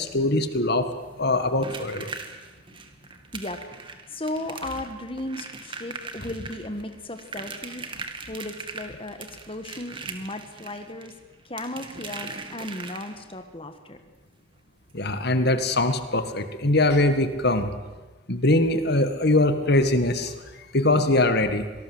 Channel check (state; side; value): normal; both; correlation 0.23